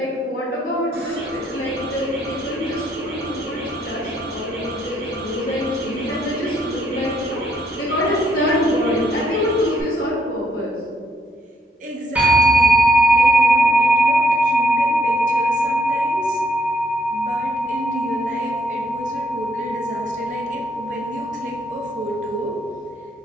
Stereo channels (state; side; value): normal; both; correlation 0.72